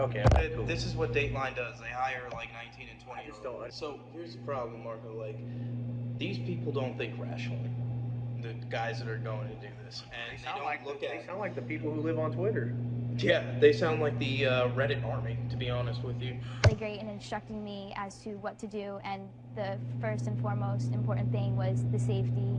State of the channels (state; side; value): identical; both; correlation 1.00